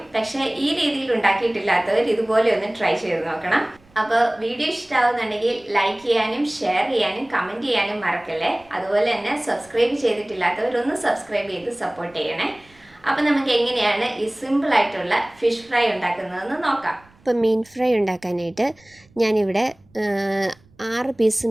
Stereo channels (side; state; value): right; noise; rumble, 30 dB below the sound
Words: പക്ഷേ ഈ രീതിയിൽ ഉണ്ടാക്കിയിട്ടില്ലാത്തവർ ഇതുപോലെ ഒന്ന് ട്രൈ ചെയ്ത് നോക്കണം. അപ്പോൾ വീഡിയോ ഇഷ്ടമാവുന്നുണ്ടെങ്കിൽ ലൈക്ക് ചെയ്യാനും ഷെയർ ചെയ്യാനും കമൻറ്റ് ചെയ്യാനും മറക്കല്ലേ. അതുപോലെ തന്നെ സബ്സ്ക്രൈബ് ചെയ്തിട്ടില്ലാത്തവരൊന്ന് സബ്സ്ക്രൈബ് ചെയ്ത് സപ്പോർട്ട് ചെയ്യണേ. അപ്പോൾ നമുക്ക് എങ്ങനെയാണ് ഈ സിമ്പിൾ ആയിട്ടുള്ള ഫിഷ് ഫ്രൈ ഉണ്ടാക്കുന്നതെന്ന് നോക്കാം. ഇപ്പോൾ മീൻ ഫ്രൈ ഉണ്ടാക്കാനായിട്ട് ഞാനിവിടെ 6 പീസ്